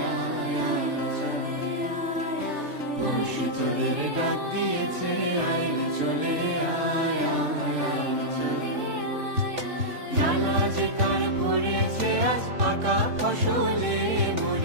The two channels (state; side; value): late; left; 3.4 ms